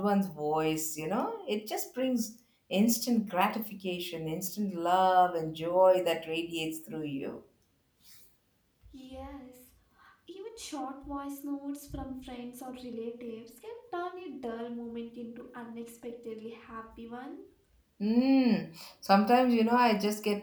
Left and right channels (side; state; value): both; identical; correlation 1.00